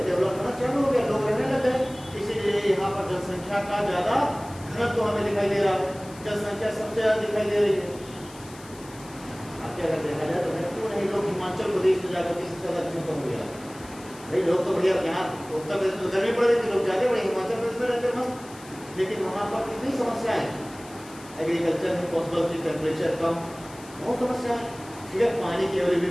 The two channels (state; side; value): noise; left; hiss, 20 dB below the sound